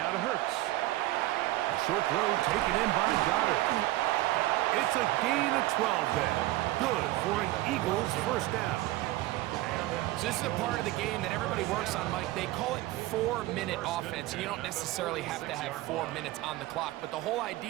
to Hurts. A short throw taken in by Goddard. It's a gain of 12 there. Good for an Eagles 1st down. So this is a part of the game that everybody works on, Mike. They call it 4-minute offense. You don't necessarily have to have 4 minutes on the clock, but the whole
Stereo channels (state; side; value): quieter; left; 17.4 dB